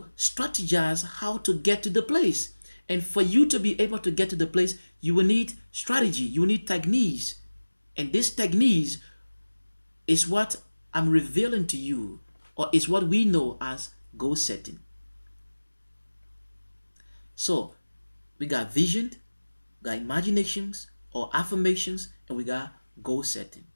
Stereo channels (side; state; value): both; inverted; correlation -1.00